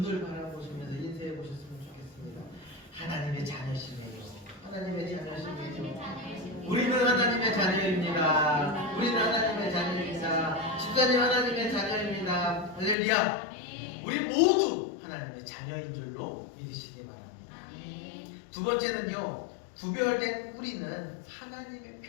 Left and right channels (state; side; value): drops out; right; at 13.0 s